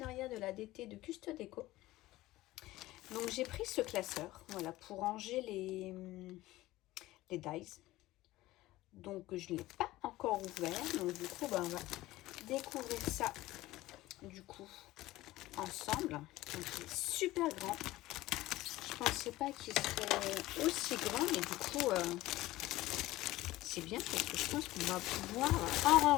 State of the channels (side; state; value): right; quieter; 17.3 dB